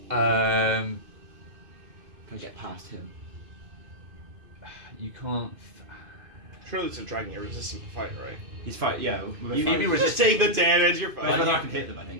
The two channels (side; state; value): left; late; 2.5 ms